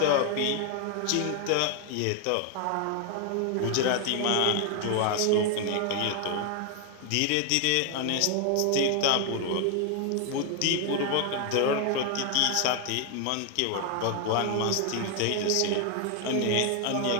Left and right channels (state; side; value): different; both; correlation 0.00